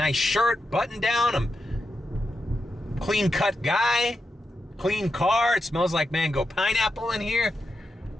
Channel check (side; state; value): both; normal; correlation 0.87